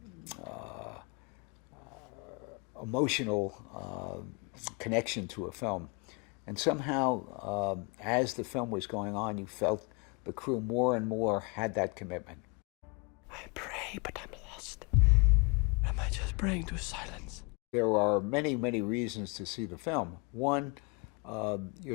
emotional connection to a film. And somehow, as the film was going on, you felt the crew more and more had that commitment. I pray, but I'm lost. Am I just praying to silence? There are many, many reasons to see the film. One,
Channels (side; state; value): right; quieter; 30.5 dB